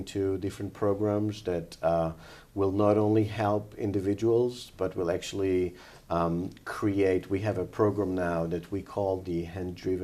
different programs that will not only help individuals, but will actually create. We have a program now that we call the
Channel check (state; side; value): identical; both; correlation 1.00